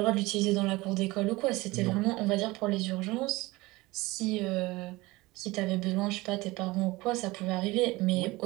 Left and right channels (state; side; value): quieter; left; 21.1 dB